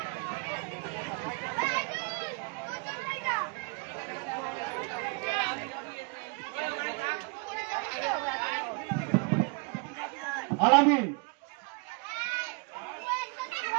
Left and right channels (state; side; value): quieter; left; 31.6 dB